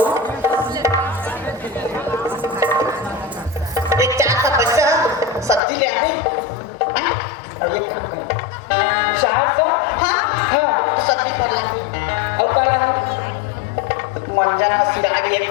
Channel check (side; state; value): right; drops out; at 5.6 s